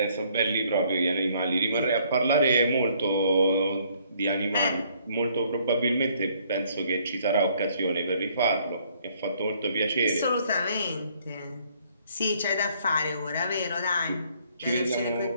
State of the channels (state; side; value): inverted; both; correlation -0.64